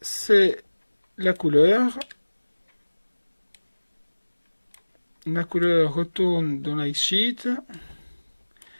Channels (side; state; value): both; inverted; correlation -1.00